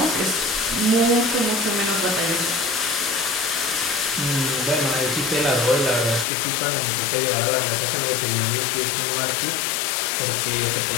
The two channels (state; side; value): drops out; right; at 6.2 s